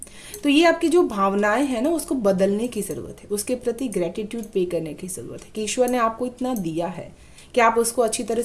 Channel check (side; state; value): both; identical; correlation 1.00